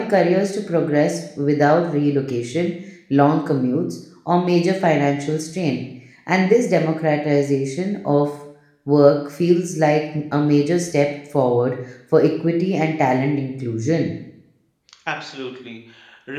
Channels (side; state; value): both; identical; correlation 1.00